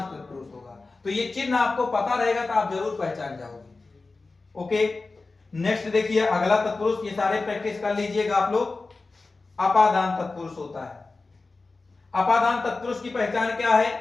तत्पुरुष होगा। तो ये चिन्ह आपको पता रहेगा तो आप जरूर पहचान जाओगे। ओके, नेक्स्ट देखिए अगला तत्पुरुष, ये सारे प्रैक्टिस कर लीजिएगा आप लोग। अपादान तत्पुरुष होता है। अपादान तत्पुरुष की पहचान क्या है,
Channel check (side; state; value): right; quieter; 3.7 dB